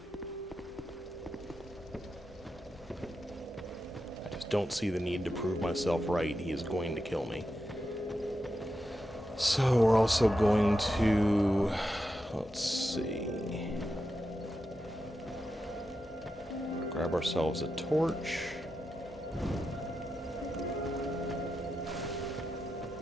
Don't see the need to prove myself right. He is going to kill me. So we're also going to, let's see, grab ourselves a torch.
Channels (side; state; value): both; normal; correlation 0.88